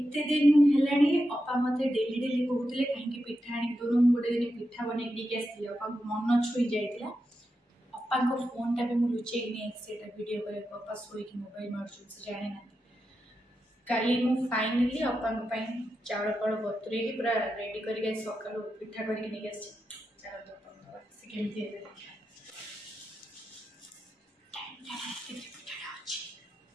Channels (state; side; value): normal; both; correlation 0.88